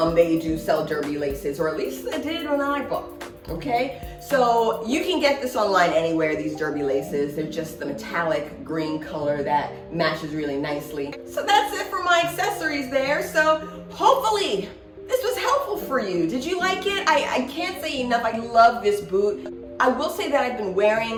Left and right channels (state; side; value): identical; both; correlation 1.00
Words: They do sell derby laces, or at least they did when I bought them. Okay, so you can get this online anywhere, these derby laces. They're just the metallic green color that matches really nicely. So that's it for my accessories there. So hopefully this was helpful for you. Did you like it? I can't say enough. I love this boot. I will say that I've been